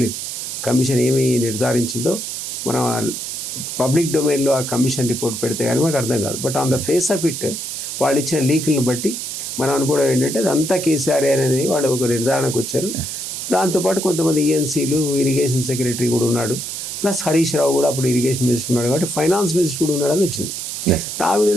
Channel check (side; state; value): right; noise; hiss, 6 dB below the sound